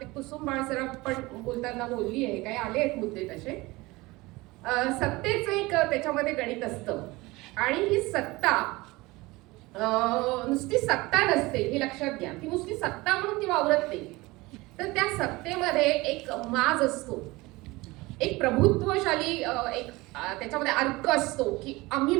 कुसुम बाळसराफ पण बोलताना बोलली आहे, काही आले आहेत मुद्दे तसे. सत्तेचं एक त्याच्यामध्ये गणित असतं आणि ही सत्ता नुसती सत्ता नसते हे लक्षात घ्या. ती नुसती सत्ता म्हणून ती वावरत नाही, तर त्या सत्तेमध्ये एक माज असतो, एक प्रभुत्वशाली एक त्याच्यामध्ये अर्क असतो की आम्ही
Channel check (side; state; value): left; quieter; 21.7 dB